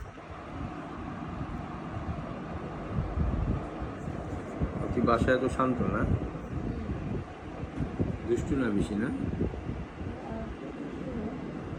বাসায় এত শান্ত না, দুষ্টু না বেশি না?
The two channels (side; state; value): both; identical; correlation 1.00